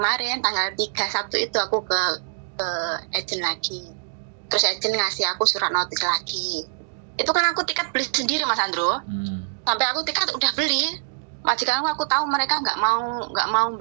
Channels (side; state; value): left; silent; digital silence